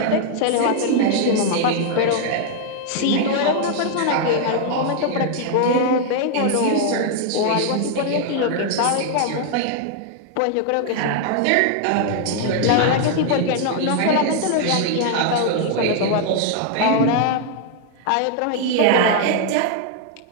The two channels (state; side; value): different; both; correlation 0.00